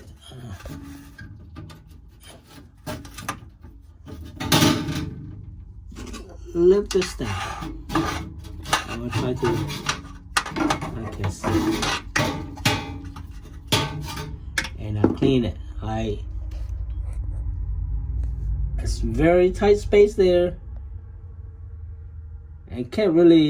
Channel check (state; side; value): identical; both; correlation 1.00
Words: lift this thing. I'm gonna try to. I can see. And I clean it. It's very tight space there, and can't